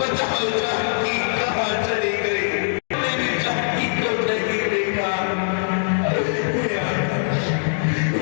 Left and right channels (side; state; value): right; silent; digital silence